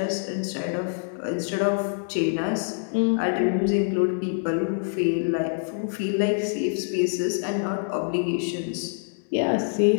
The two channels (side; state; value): right; silent; 61 dB below the other